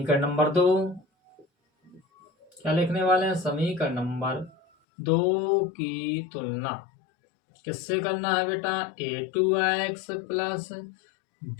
नंबर 2, क्या लिखने वाले हैं, समीकरण नंबर 2 की तुलना किससे करना है बेटा, a2x plus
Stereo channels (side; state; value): right; drops out; at 4.7 s